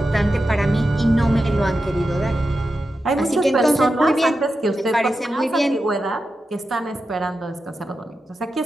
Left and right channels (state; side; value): normal; both; correlation 0.90